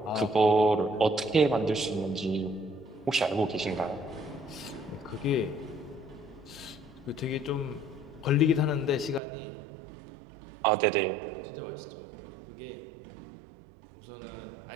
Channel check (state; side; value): drops out; left; at 9.2 s